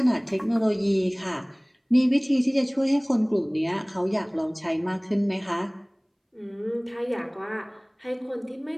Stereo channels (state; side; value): identical; both; correlation 1.00